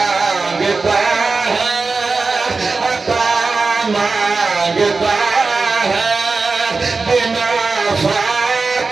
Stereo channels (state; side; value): quieter; left; 4.1 dB